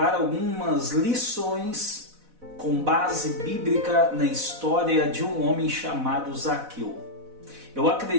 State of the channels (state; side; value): late; left; 4.0 ms